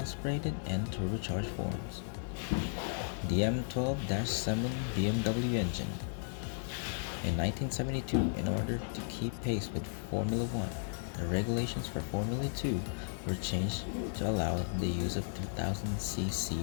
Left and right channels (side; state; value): right; silent; digital silence